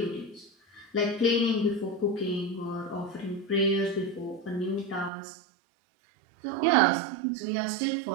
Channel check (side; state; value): left; drops out; at 5.1 s